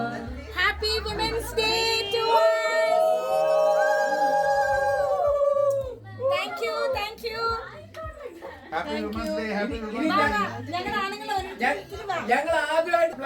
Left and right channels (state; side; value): identical; both; correlation 1.00